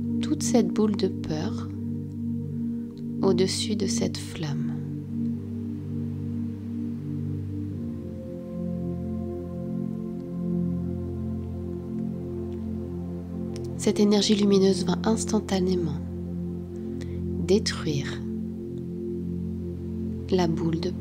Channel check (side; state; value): both; identical; correlation 1.00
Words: toute cette boule de peur au-dessus de cette flamme. Cette énergie lumineuse va instantanément détruire la boule de